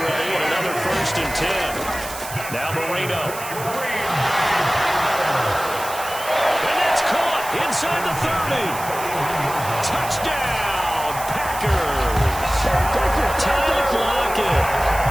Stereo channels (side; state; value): right; noise; hiss, 11 dB below the sound